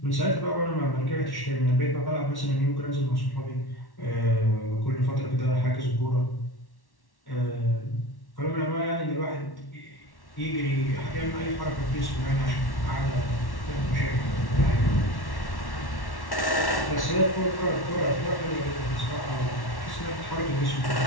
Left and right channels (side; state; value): right; late; 1.1 ms